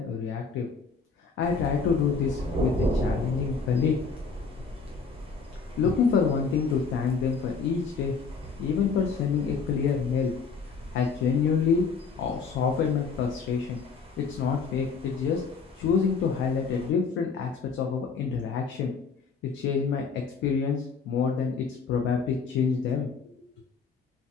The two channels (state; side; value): quieter; right; 5.2 dB